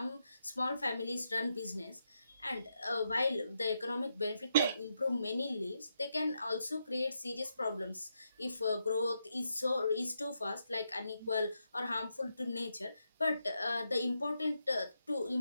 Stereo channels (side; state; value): both; inverted; correlation -0.83